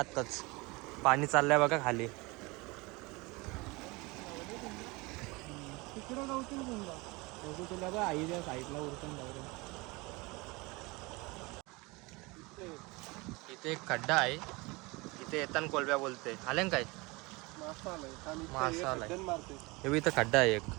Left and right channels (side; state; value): left; quieter; 24.9 dB